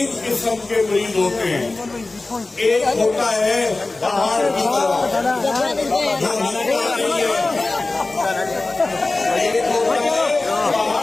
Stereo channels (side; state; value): right; quieter; 3.2 dB